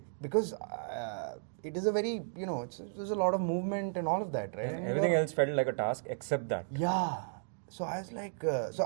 Because it is a very, there's a lot of movement and all of that, right? And everything else felt like a task except that. Yeah. So I was like, so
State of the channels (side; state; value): left; silent; digital silence